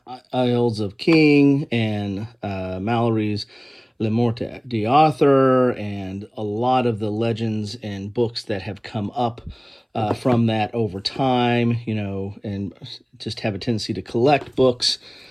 Isles of King and Mallory's Le Morte d'Arthur, and a lot of the legends and books that have come up from that over time, and just have a tendency to collect books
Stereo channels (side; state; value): both; identical; correlation 1.00